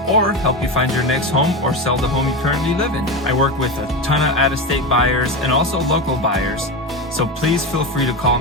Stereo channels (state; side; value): normal; both; correlation 0.19